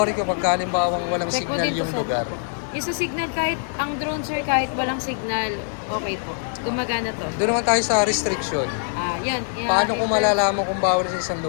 ko pag halimbawang walang Check mo signal dito yung sa- lugar. Yung sa signal, kahit ang drone sir, kahit walang signal, okay po. Gumagana to. Doon naman tayo sa restriction. Yan. Paano kung malalaman kung bawal sa isang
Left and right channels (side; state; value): right; silent; digital silence